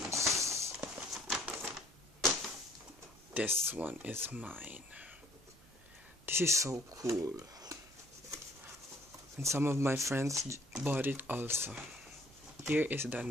This one is mine. This is so cool. And some of my friends bought it also. Here is the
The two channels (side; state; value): right; noise; rumble, 25 dB below the sound